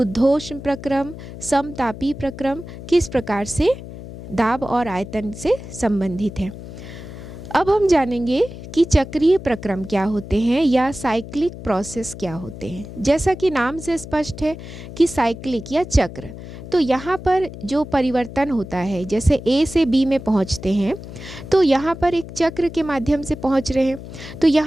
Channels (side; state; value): left; noise; hum, 13 dB below the sound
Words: प्रक्रम, समतापी प्रक्रम किस प्रकार से दाब और आयतन से संबंधित है। अब हम जानेंगे कि चक्रीय प्रक्रम क्या होते हैं या साइक्लिक प्रोसेस क्या होते हैं। जैसा कि नाम से स्पष्ट है कि साइक्लिक या चक्र, तो यहाँ पर जो परिवर्तन होता है, जैसे ए से बी में पहुँचते हैं तो यहाँ पर एक चक्र के माध्यम से पहुँच रहे हैं। तो